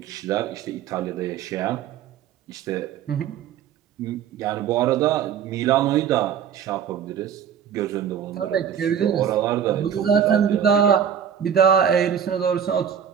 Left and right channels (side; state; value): left; quieter; 8.5 dB